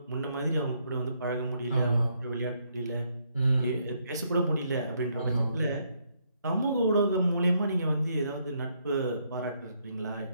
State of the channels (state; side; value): inverted; both; correlation -0.73